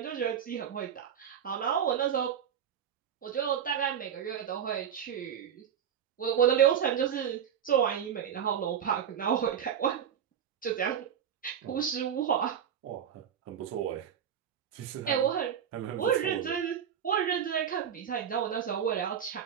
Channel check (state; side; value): quieter; left; 8.7 dB